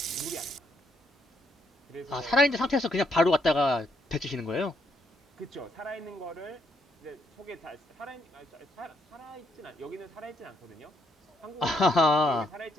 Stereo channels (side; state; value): both; normal; correlation 0.74